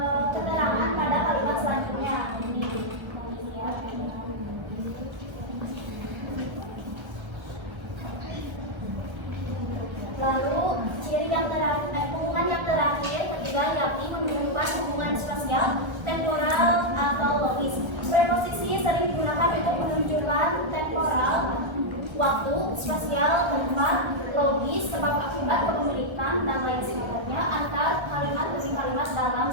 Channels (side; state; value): left; late; 1.3 ms